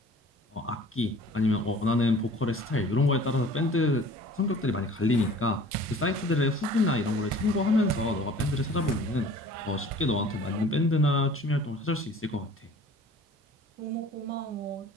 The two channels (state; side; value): normal; both; correlation 0.48